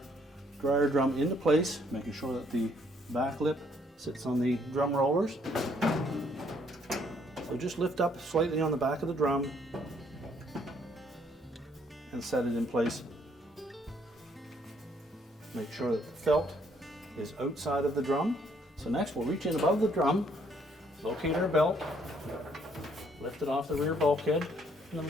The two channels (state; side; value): normal; both; correlation 0.67